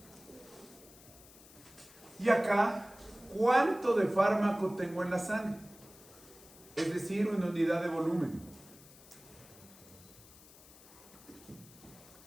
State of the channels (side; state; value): left; noise; hiss, 21 dB below the sound